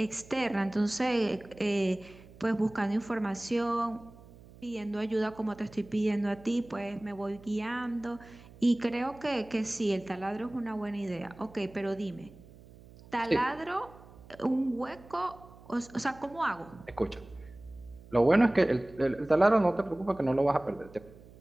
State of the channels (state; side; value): noise; right; hum, 21 dB below the sound